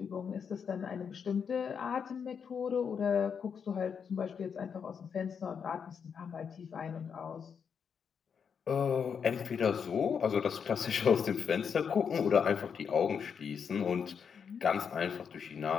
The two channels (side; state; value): right; quieter; 6.8 dB